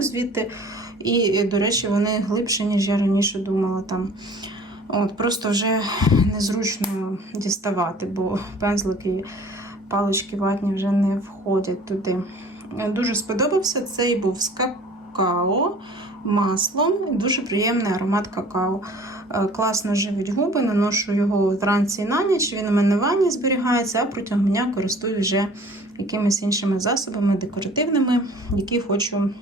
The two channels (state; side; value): normal; both; correlation 0.49